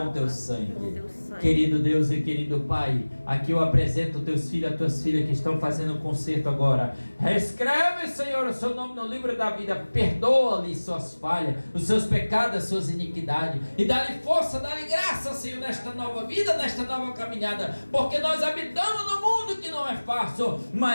o teu sangue. Querido Deus e querido Pai, aqui eu apresento teus filhos, as tuas filhas que estão fazendo um concerto agora. Reescreve, Senhor, o seu nome no livro da vida. Perdoa-lhe suas falhas, os seus pecados, as suas iniquidades, e dá-lhe força, dá-lhe graça, Senhor, nesta nova vida, nesta nova caminhada, porque nós habitamos no mundo que não é fácil,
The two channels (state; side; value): inverted; both; correlation -1.00